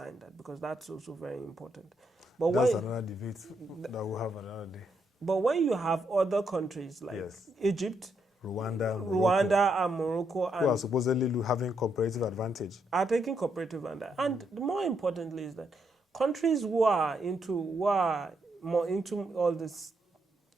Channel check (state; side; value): normal; both; correlation 0.78